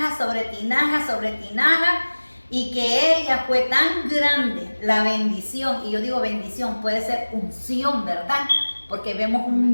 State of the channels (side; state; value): both; inverted; correlation -1.00